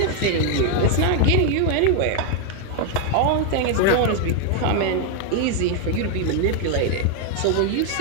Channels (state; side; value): different; both; correlation 0.01